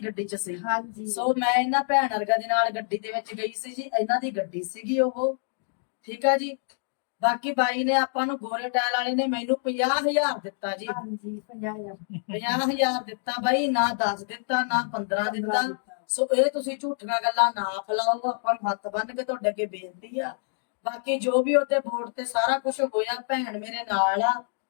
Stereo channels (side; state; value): right; silent; digital silence